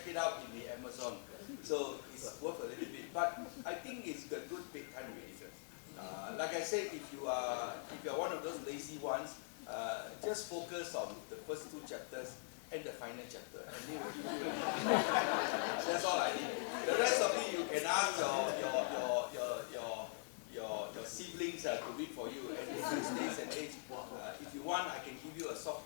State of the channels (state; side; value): silent; right; digital silence